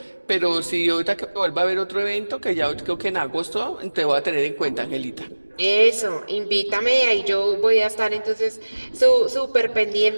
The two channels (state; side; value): inverted; both; correlation -1.00